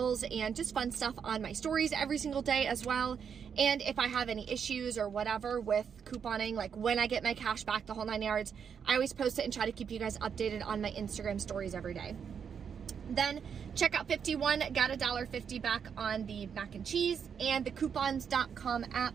and just fun stuff on my stories every single day as well. And if I have any issues or whatever with couponing, like when I get my cash back, the whole 9 yards, I always post it and try to keep you guys updated on my Instagram stories every day. Then checkout 51, got $1.50 back on the mac and cheese, and the coupons.com app,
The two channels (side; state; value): left; quieter; 7.2 dB